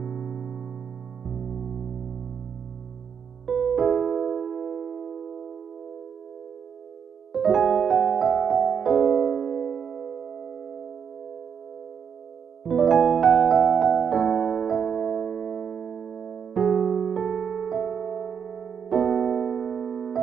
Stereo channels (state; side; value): quieter; left; 7.2 dB